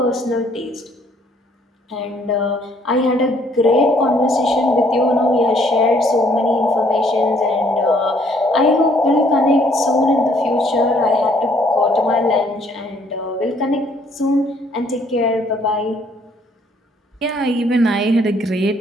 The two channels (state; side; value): normal; both; correlation 0.64